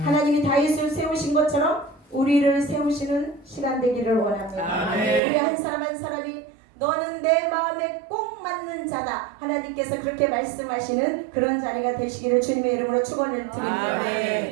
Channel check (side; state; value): left; drops out; at 5.2 s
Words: 다윗을 세우신 것처럼 우리를 세우시는 시간 되기를 원합니다. 우리 한 사람 한 사람이 너는 내 마음에 꼭 맞는 자다. 하나님께서 그렇게 말씀하시는 그런 자리가 되시기를 주님의 이름으로 축원을 드립니다.